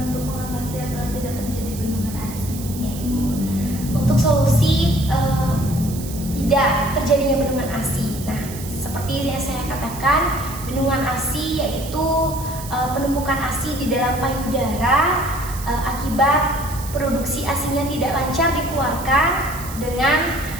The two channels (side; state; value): right; noise; hiss, 13 dB below the sound